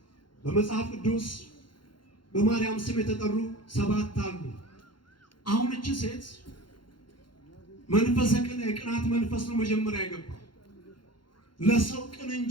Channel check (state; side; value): late; right; 0.72 ms